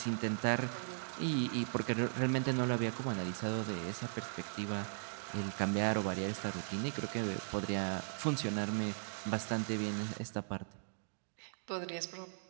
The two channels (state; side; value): silent; left; digital silence